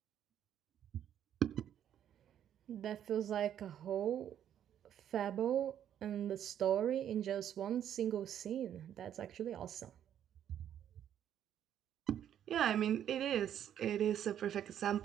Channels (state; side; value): quieter; left; 10.1 dB